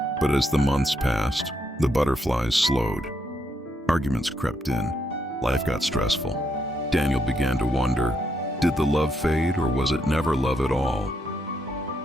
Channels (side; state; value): both; normal; correlation 0.78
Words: But as the months passed, the butterflies slowed. Arguments crept in. Life got stressful. Daniel began to wonder, did the love fade, or was it never love at all?